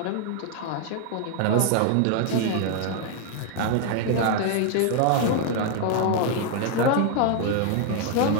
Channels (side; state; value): both; different; correlation 0.00